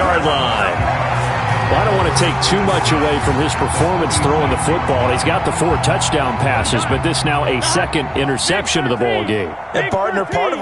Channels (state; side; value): identical; both; correlation 1.00